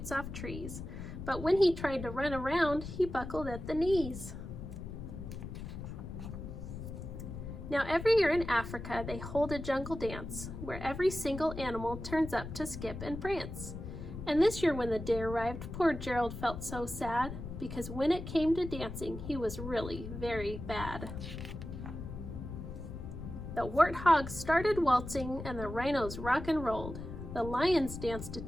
off trees, but when he tried to run around, he buckled at the knees. Now every year in Africa, they hold a jungle dance where every single animal turns up to skip and prance. And this year when the day arrived, poor Gerald felt so sad because when it came to dancing, he was really very bad. The warthogs started waltzing and the rhinos rock and rolled. The lions danced a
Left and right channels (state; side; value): noise; left; rumble, 8 dB below the sound